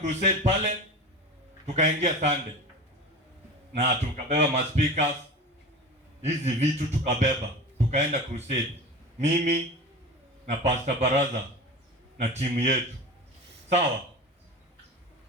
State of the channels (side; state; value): both; normal; correlation 0.32